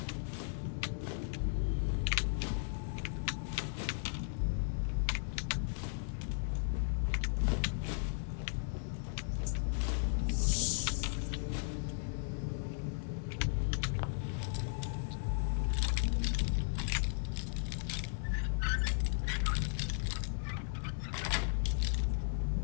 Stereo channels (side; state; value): right; silent; 54 dB below the other